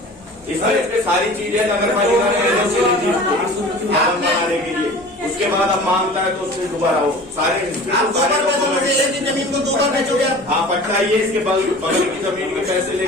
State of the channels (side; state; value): both; normal; correlation 0.41